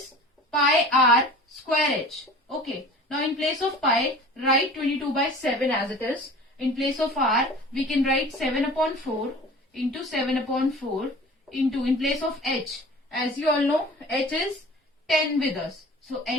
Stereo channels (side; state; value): both; normal; correlation 0.42